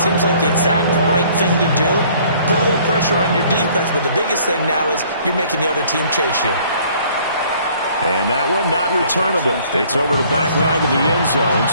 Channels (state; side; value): inverted; both; correlation -0.57